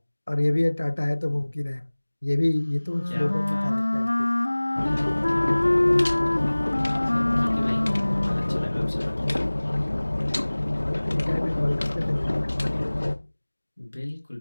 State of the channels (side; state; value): both; inverted; correlation -1.00